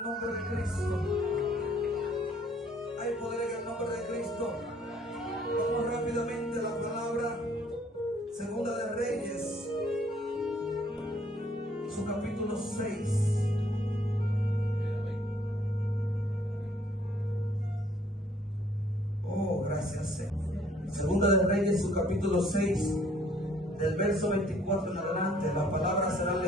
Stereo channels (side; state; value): both; normal; correlation 0.62